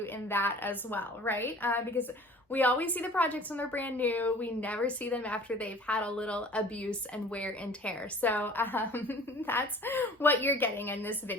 in that as well, right? Because we always see the projects when they're brand new. We never see them after they've had a little abuse and wear and tear. So that's what you're getting in this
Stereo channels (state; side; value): normal; both; correlation 0.47